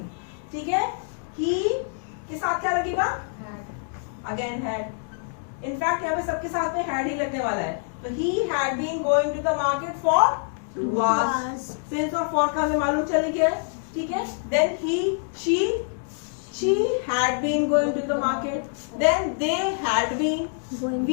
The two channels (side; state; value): right; silent; 61 dB below the other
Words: ठीक है. ही के साथ क्या लगेगा. Again had. इनफैक्ट यहाँ पे सबके साथ में हैड ही लगने वाला है. तो he had been going to the market for 2 hours. Since और फॉर का हमें मालूम चल गया. ठीक है. Then he she had been going to the market. Then they had been. Going